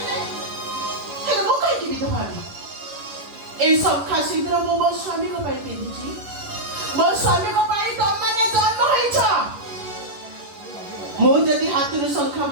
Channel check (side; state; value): left; late; 11 ms